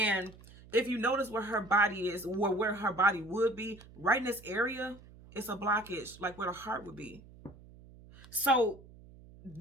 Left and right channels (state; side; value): noise; right; hum, 21 dB below the sound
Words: if you notice where her body is, or where her body would be, right in this area, it's a blockage, like where the heart would be. So